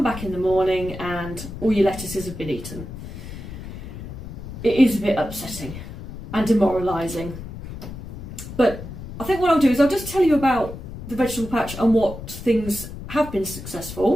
back in the morning and all your lettuces have been eaten. It is a bit upsetting and demoralising. But I think what I'll do is I'll just tell you about the vegetable patch and what things have been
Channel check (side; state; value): left; noise; rumble, 11 dB below the sound